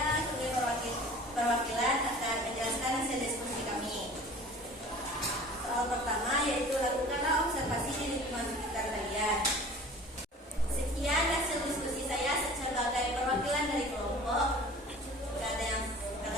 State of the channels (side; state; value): both; normal; correlation 0.44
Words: sebagai perwakilan akan menjelaskan hasil diskusi kami. Soal pertama yaitu lakukanlah observasi di lingkungan sekitar kalian. Sekian hasil diskusi saya sebagai perwakilan dari kelompok.